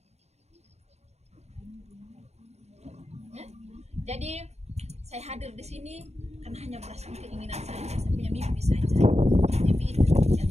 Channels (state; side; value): late; left; 0.31 ms